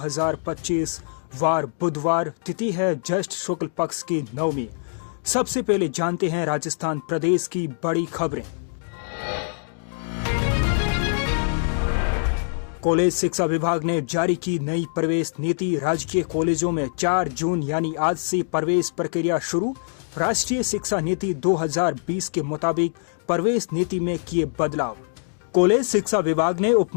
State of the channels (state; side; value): silent; right; digital silence